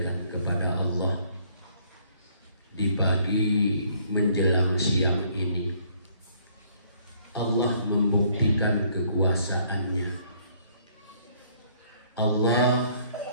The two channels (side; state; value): both; inverted; correlation -0.63